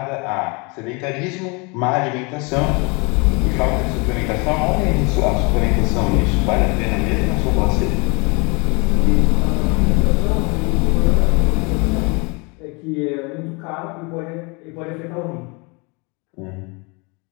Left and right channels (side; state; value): right; quieter; 29.9 dB